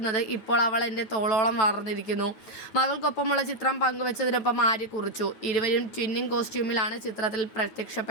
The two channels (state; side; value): late; right; 9.3 ms